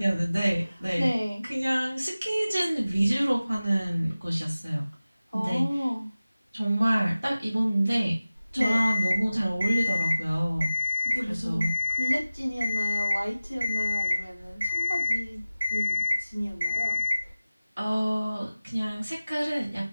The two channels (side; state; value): both; inverted; correlation -0.96